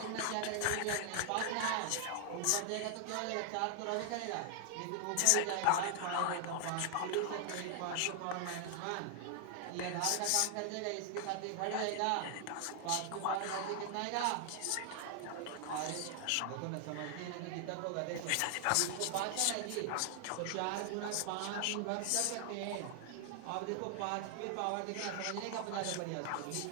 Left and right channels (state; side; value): different; both; correlation 0.00